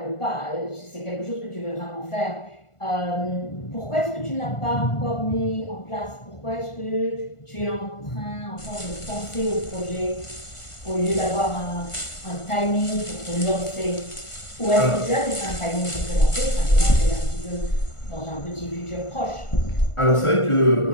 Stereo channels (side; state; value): right; late; 1.4 ms